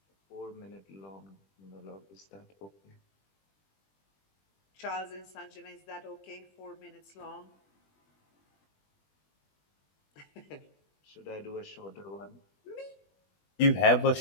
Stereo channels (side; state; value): right; late; 20 ms